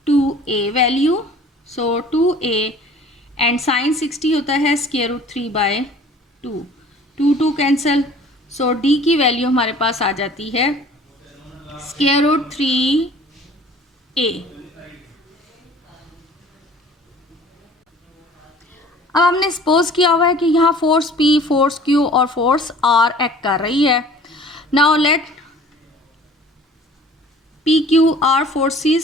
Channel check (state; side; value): normal; both; correlation 0.49